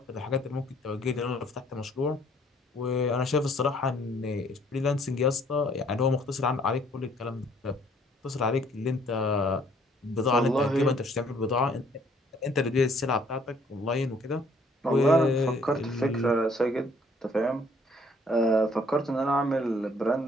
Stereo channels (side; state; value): both; normal; correlation 0.62